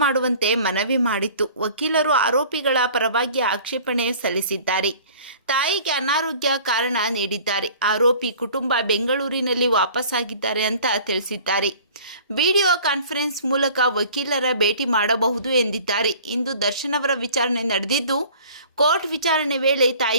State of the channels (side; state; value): both; inverted; correlation -0.48